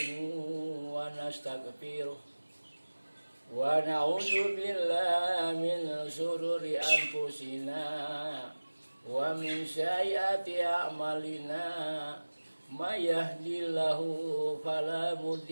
wa nastaghfiruh wa na'udzu billahi min shururi anfusina wa min sayyiati a'malina may yahdihillahu fala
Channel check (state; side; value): inverted; both; correlation -1.00